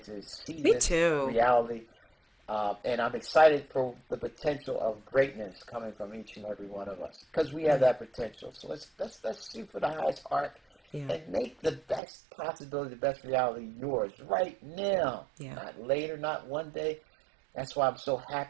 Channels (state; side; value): drops out; left; at 12.0 s